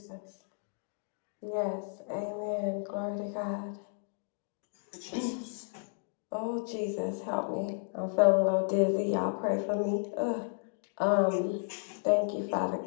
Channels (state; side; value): silent; right; digital silence